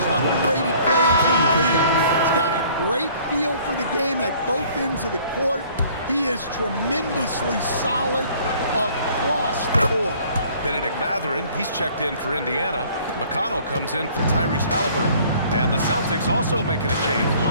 underrated players in the league. He's got a great feel for the game at both ends of the court. He is tremendously solid across the board. Benedict Mathurin, he's checked in for Indiana. McConnell comes in for Tyrese Halliburton. And the Celtics also making a change.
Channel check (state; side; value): inverted; both; correlation -0.55